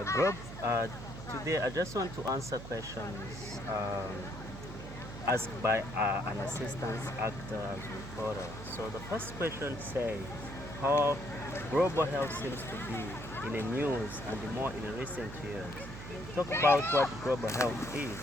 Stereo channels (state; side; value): noise; right; hum, 11 dB below the sound